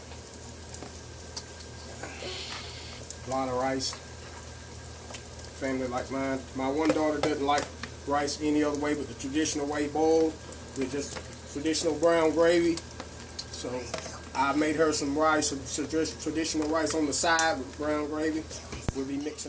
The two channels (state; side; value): identical; both; correlation 1.00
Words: A lot of rice. Family like mine. My one daughter doesn't like rice any other way but the traditional way, boiled with just traditional brown gravy. So I made her some rice, some traditional rice on the side with brown gravy. We'll be